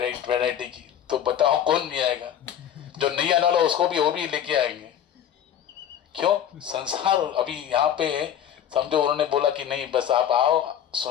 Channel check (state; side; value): quieter; right; 9.7 dB